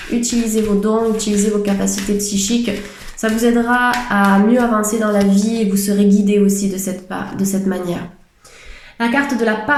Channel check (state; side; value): identical; both; correlation 1.00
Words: utilisez vos dons, utilisez vos capacités psychiques, ça vous aidera à mieux avancer dans la vie et vous serez guidé aussi de cette manière. La carte de la